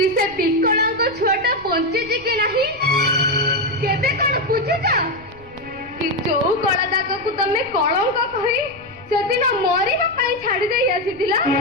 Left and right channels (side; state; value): left; noise; rumble, 23 dB below the sound